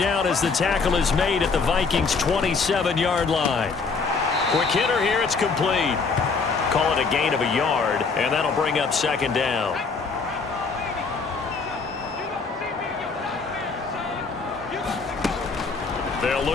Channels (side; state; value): right; quieter; 4.7 dB